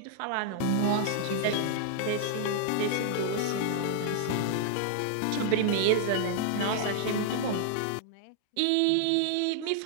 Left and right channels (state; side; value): different; both; correlation -0.01